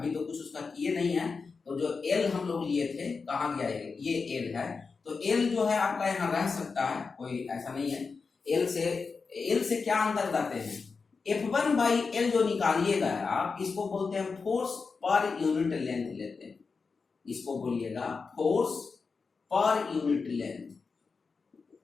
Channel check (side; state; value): right; quieter; 4.8 dB